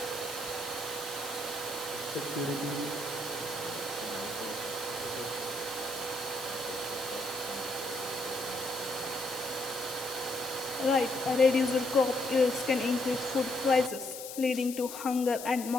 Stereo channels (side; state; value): left; noise; hiss, 10 dB below the sound